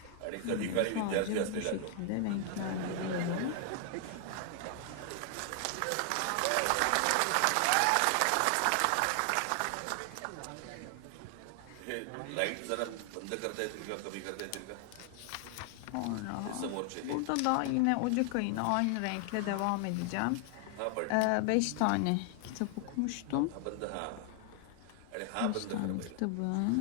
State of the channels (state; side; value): different; both; correlation 0.00